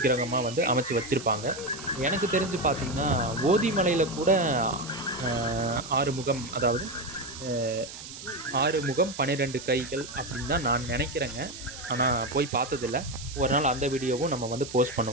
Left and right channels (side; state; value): right; noise; hiss, 12 dB below the sound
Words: வந்து அமைச்சு வச்சுருப்பாங்க. எனக்கு தெரிஞ்சு பார்த்திங்கன்னா ஓதிமலையில் கூட 6 முகம், அதாவது 6 முகம் 12 கைகள் அப்படின்னு தான் நான் நினைக்கிறேங்க. ஆனால் போய் பார்த்ததில்ல. ஒரு நாள் அந்த வீடியோவும் நம்ம வந்து போஸ்ட்